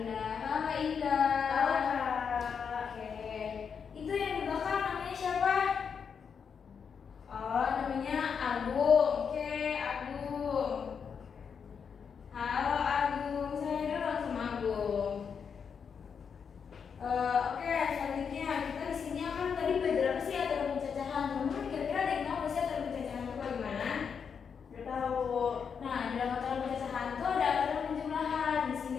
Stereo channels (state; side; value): quieter; right; 6.6 dB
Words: Halo Indah. Halo Kak. Oke. Itu yang di belakang namanya siapa? Oh, namanya Agung. Oke, Agung. Halo Agung, saya dulu sama Agung. Oke, selanjutnya kita di sini akan tadi belajar apa sih aturan pencacahan? Teman-teman kira-kira ada yang tahu nggak sih aturan pencacahan itu bagaimana? Gak tahu. Nah, dalam aturan pencacahan itu ada aturan penjumlahan. Di